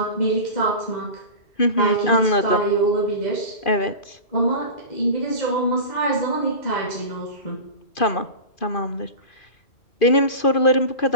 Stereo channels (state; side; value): late; right; 2.5 ms